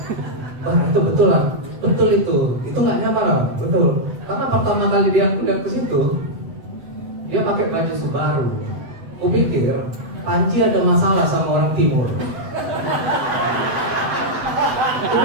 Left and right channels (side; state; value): left; late; 7.9 ms